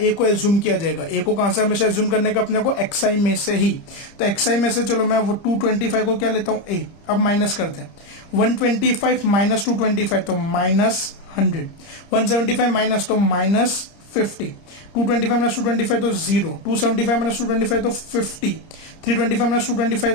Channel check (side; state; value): right; late; 30 ms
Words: को एज्यूम किया जाएगा। ए को कहां से हमेशा एज्यूम करने का अपने को, एक्सआई में से ही। तो एक्सआई में से चलो मैं वो 225 को क्या लेता हूं ए। अब माइनस करते हैं, 125 माइनस 225 तो माइनस 100, 175 माइनस तो माइनस 50, 225 माइनस 225 तो 0, 275 माइनस 225 तो 50, 325 माइनस 225